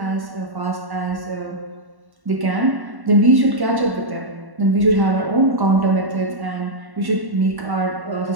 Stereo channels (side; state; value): left; late; 1.1 ms